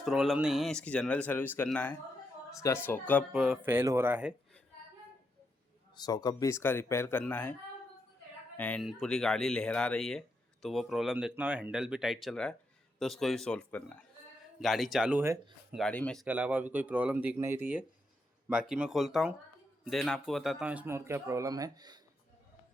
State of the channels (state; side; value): normal; both; correlation 0.82